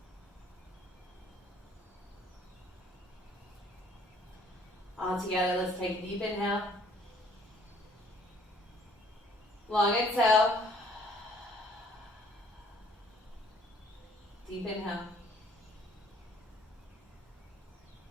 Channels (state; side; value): normal; both; correlation 0.59